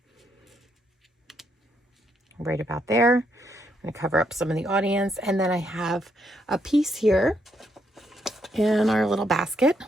right about there. I'm going to cover up some of the audience. And then I have a piece here in our little basket.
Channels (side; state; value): both; normal; correlation 0.76